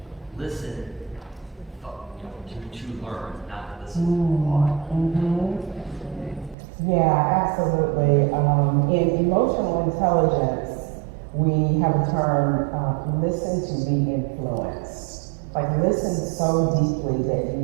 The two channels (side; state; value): left; drops out; at 6.6 s